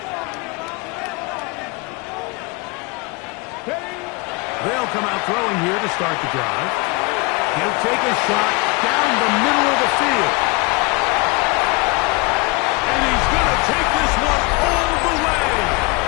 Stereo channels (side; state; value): right; quieter; 27.0 dB